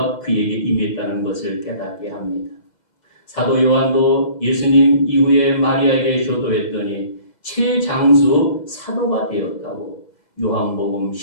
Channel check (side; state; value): right; late; 2.0 ms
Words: 그에게 임했다는 것을 깨닫게 합니다. 사도 요한도 예수님 이후에 마리아에게 효도했더니 최장수 사도가 되었다고 요한복음